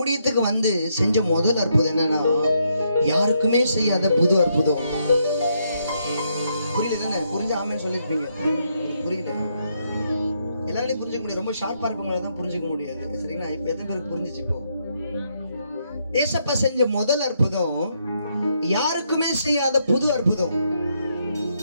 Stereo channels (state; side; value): inverted; both; correlation -0.76